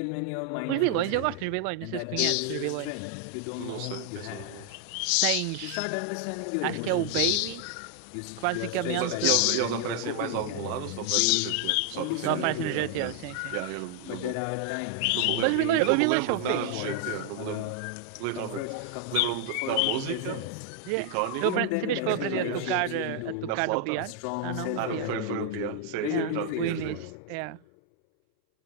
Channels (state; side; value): different; both; correlation 0.00